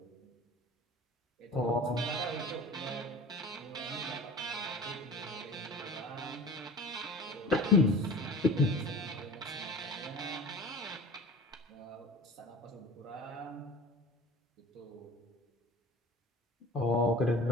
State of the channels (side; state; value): both; normal; correlation 0.39